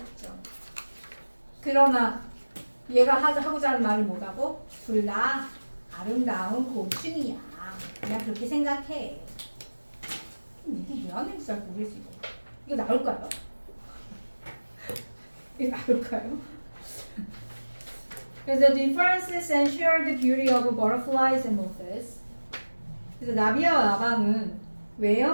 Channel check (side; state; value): both; inverted; correlation -1.00